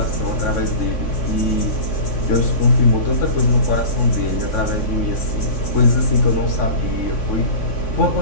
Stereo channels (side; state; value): right; late; 3.6 ms